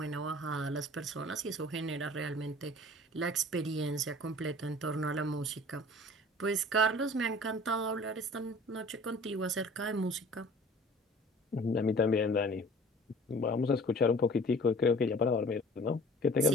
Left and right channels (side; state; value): both; normal; correlation 0.47